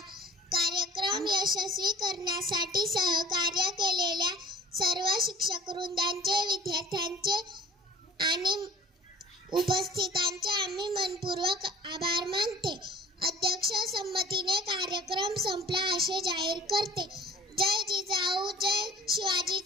कार्यक्रम यशस्वी करण्यासाठी सहकार्य केलेल्या सर्व शिक्षक वृंदांचे, विद्यार्थ्यांचे आणि उपस्थितांचे आम्ही मनपूर्वक आभार मानते. अध्यक्ष संमतीने कार्यक्रम संपला असे जाहीर करते. जय जिजाऊ, जय शिवाजी,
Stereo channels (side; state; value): both; normal; correlation 0.47